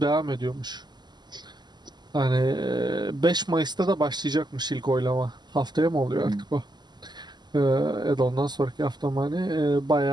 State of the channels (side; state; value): left; late; 0.21 ms